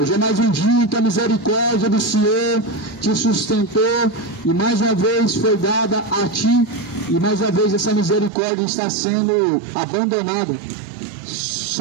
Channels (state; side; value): drops out; left; at 8.3 s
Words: é mais um dia em que a misericórdia do Senhor te sustentou e mais uma vez foi dada a ti, e mais uma vez essa misericórdia está sendo abandonada.